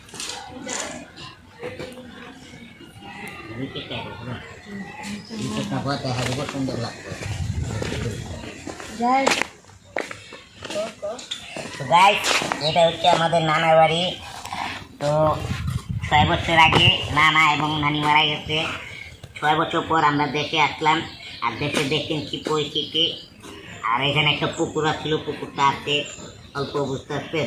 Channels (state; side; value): identical; both; correlation 1.00